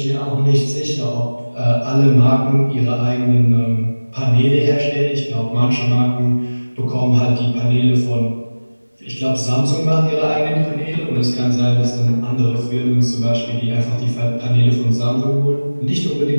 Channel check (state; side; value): inverted; both; correlation -1.00